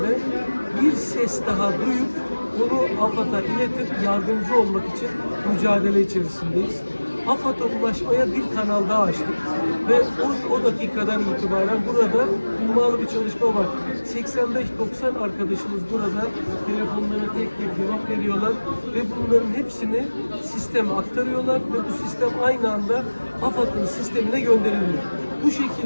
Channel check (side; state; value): both; inverted; correlation -1.00